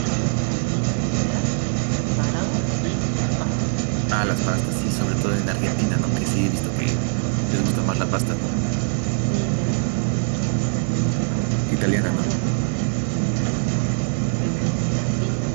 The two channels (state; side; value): silent; left; 64 dB below the other